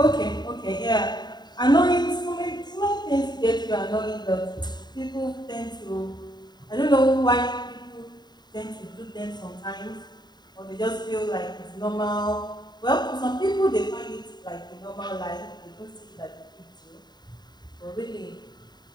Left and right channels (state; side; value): late; right; 0.20 ms